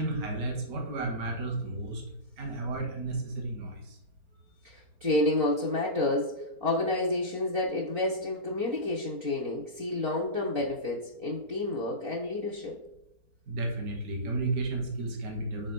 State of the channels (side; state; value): left; late; 4.4 ms